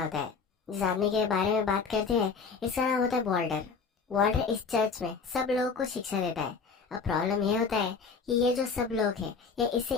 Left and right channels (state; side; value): quieter; right; 5.2 dB